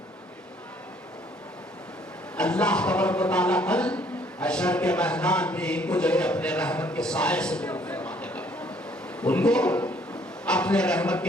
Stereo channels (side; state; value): both; normal; correlation 0.62